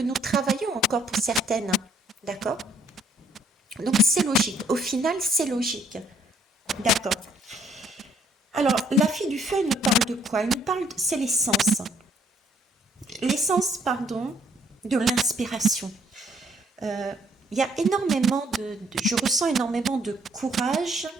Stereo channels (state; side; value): normal; both; correlation 0.65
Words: nous travaillons encore pour certaines. D'accord? Donc c'est logique. Au final, c'est logique. D'accord. Alors, la fille du feu, elle nous parle de quoi? Elle nous parle, c'est l'essence. L'essence, pardon, de l'inspiration. Il y a énormément je ressens énormément de courage,